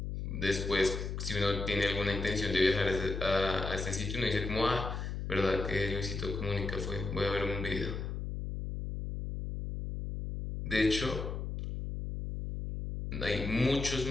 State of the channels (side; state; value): left; noise; hum, 4 dB below the sound